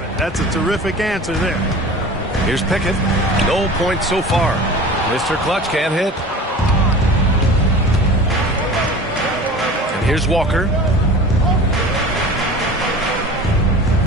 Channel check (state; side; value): normal; both; correlation 0.38